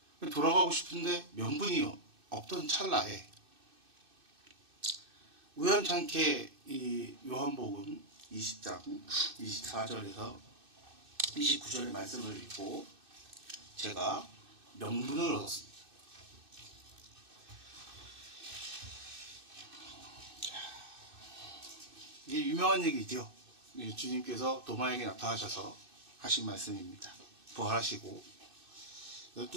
돌아가고 싶은데 명분이 없던 찰나에 우연찮게 이 요한복음 20장 24절에서 29절의 말씀을 읽고 제가 명분을 얻었습니다. 이게 유명한 얘기죠. 주님께서 도마에게 나타나셔서 하신 말씀입니다. 부활하시고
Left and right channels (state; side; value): late; left; 2.6 ms